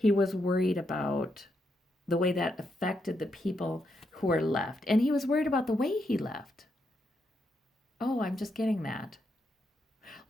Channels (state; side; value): normal; both; correlation 0.81